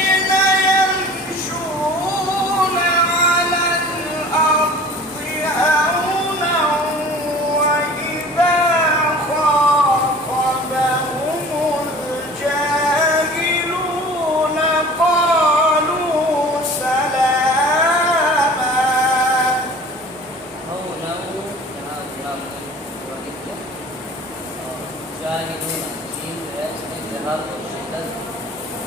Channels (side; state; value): both; normal; correlation 0.44